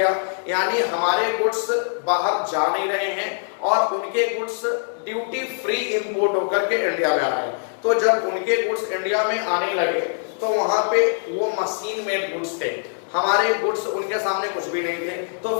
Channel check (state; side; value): silent; right; 64 dB below the other